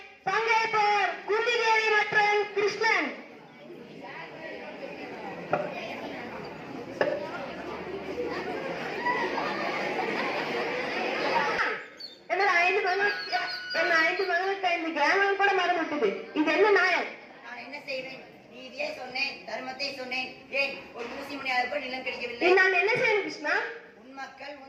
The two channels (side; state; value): both; identical; correlation 1.00